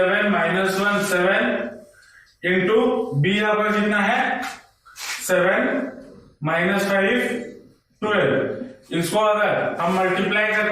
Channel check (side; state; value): both; identical; correlation 1.00